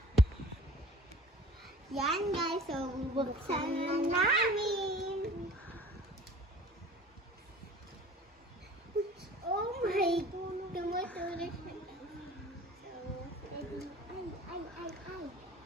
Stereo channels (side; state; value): both; normal; correlation 0.46